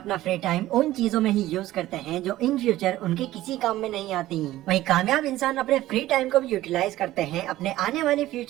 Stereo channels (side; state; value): left; quieter; 15.4 dB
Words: फ्री टाइम उन चीजों में ही यूज करते हैं जो इन फ्यूचर उनके किसी काम में नहीं आती। वहीं कामयाब इंसान अपने फ्री टाइम को भी यूटिलाइज करते हैं अपने आने वाले